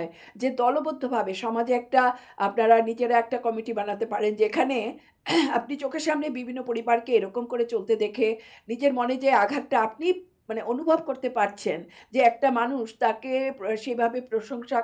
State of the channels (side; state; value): both; identical; correlation 1.00